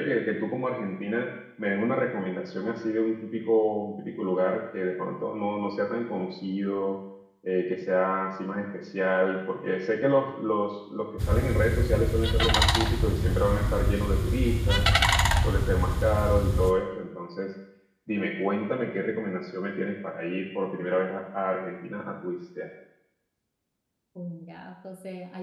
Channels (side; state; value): both; identical; correlation 1.00